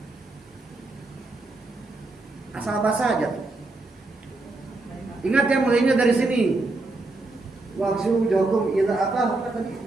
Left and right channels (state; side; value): quieter; left; 3.1 dB